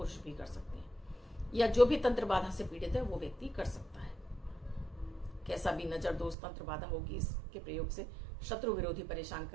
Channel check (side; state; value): left; drops out; at 6.4 s